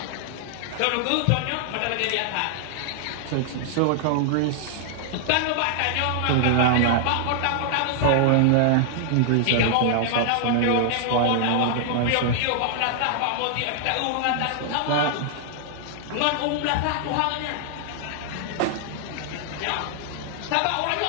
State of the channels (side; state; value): both; different; correlation 0.00